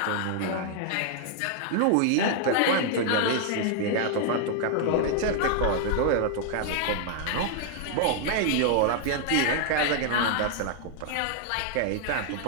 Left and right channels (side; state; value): both; different; correlation 0.00